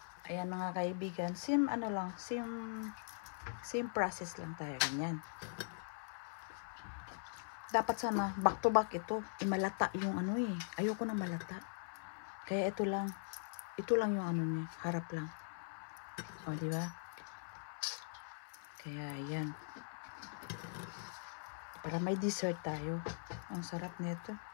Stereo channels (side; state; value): right; silent; 50 dB below the other